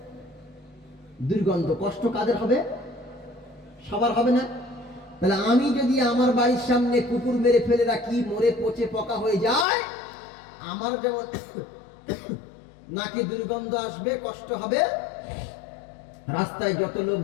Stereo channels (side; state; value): right; drops out; at 9.7 s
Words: দুর্গন্ধ। কষ্ট কাদের হবে? সবার হবে না? তাহলে আমি যদি আমার বাড়ির সামনে কুকুর মেরে ফেলে রাখি, মরে পচে পোকা হয়ে যায়, আমার যেমন নাকি দুর্গন্ধ আসবে, কষ্ট হবে, রাস্তায় যত লোক